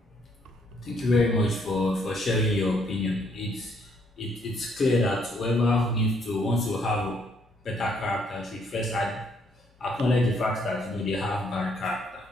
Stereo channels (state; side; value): normal; both; correlation 0.69